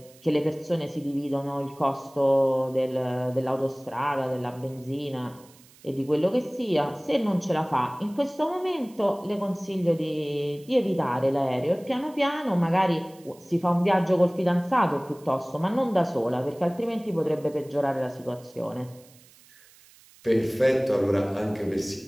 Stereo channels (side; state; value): right; noise; hiss, 26 dB below the sound